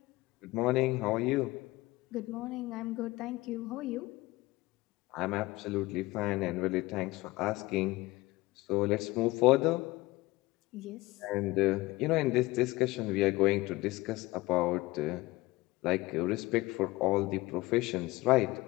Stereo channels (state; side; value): quieter; right; 20.2 dB